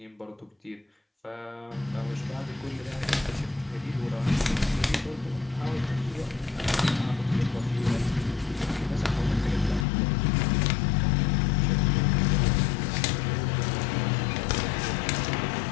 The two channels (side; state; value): right; drops out; at 9.9 s